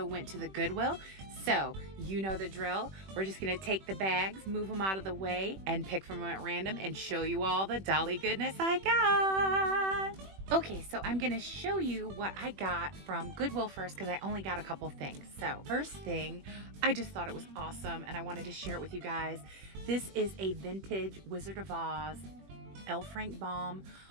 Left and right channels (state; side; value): late; left; 21 ms